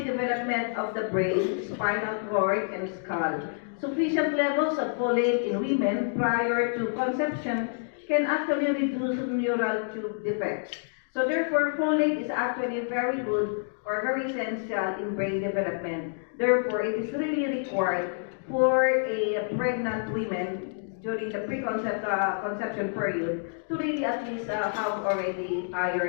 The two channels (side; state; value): right; silent; digital silence